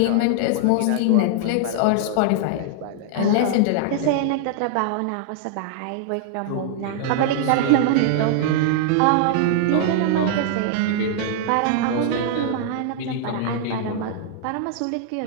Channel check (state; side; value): different; both; correlation -0.01